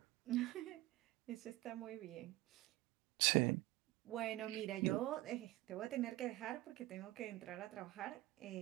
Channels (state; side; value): quieter; left; 17.9 dB